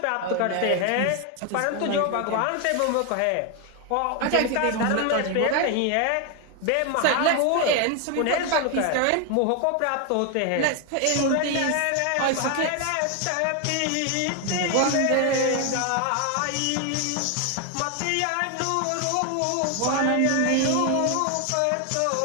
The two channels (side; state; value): both; different; correlation 0.01